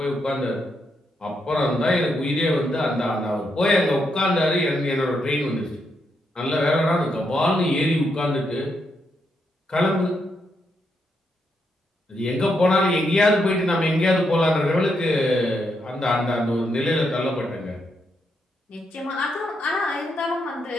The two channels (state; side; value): normal; both; correlation 0.80